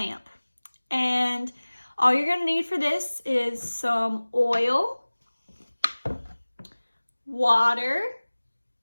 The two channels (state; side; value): inverted; both; correlation -1.00